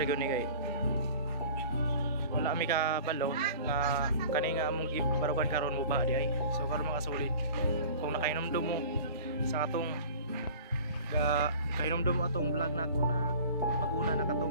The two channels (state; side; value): inverted; both; correlation -0.43